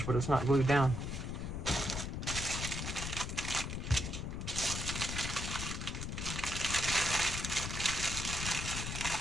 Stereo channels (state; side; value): noise; left; rumble, 4 dB below the sound